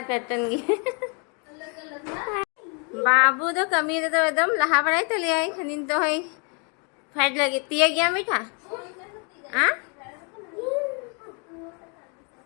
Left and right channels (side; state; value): right; quieter; 35.9 dB